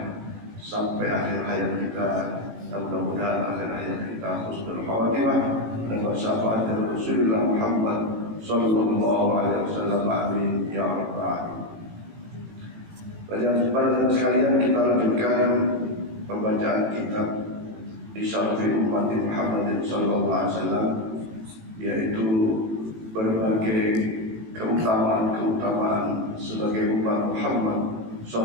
sampai akhir hayat kita. Mudah-mudahan akhir hayat kita husnul khatimah dan bersyafaat dari Rasulullah Muhammad sallallahu alaihi wasallam. Amin ya rabbal alamin. Para sekalian, kita lanjutkan pembacaan kitab Isyarafi Ummati Muhammadin sallallahu alaihi wasallam, yaitu berbagai keutamaan sebagai umat Muhammad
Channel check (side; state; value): left; late; 18 ms